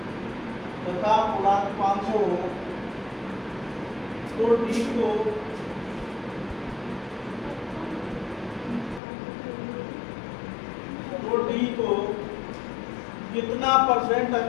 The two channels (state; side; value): drops out; right; at 9.0 s